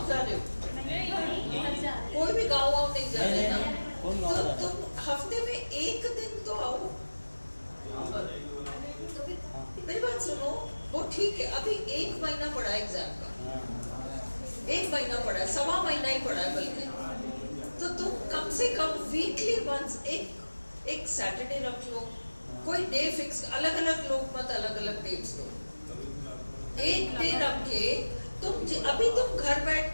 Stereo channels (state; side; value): inverted; both; correlation -1.00